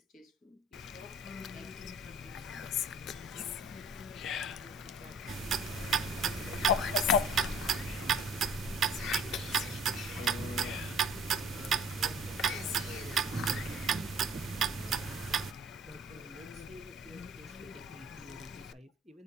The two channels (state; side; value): normal; both; correlation 0.53